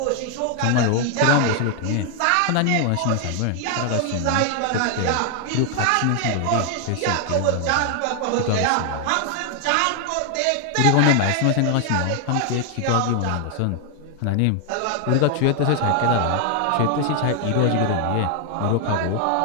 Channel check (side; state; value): both; different; correlation 0.00